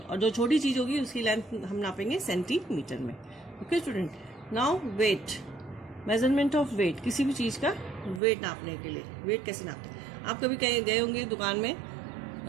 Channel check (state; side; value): drops out; left; at 8.2 s